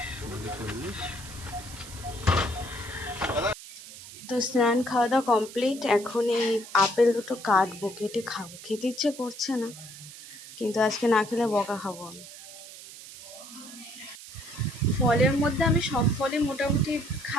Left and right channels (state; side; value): noise; right; hiss, 15 dB below the sound